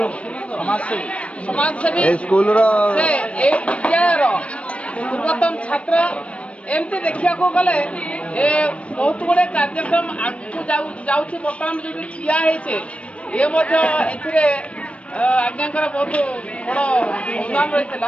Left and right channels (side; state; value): right; late; 0.062 ms